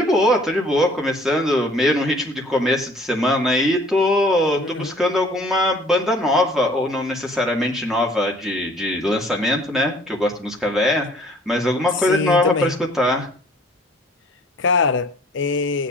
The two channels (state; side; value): normal; both; correlation 0.54